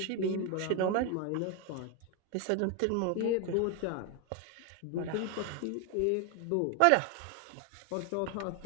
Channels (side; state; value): both; different; correlation 0.01